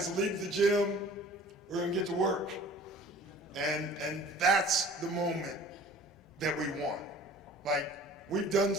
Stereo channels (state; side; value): normal; both; correlation 0.46